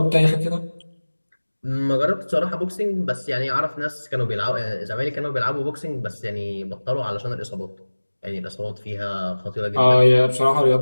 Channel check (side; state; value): both; inverted; correlation -1.00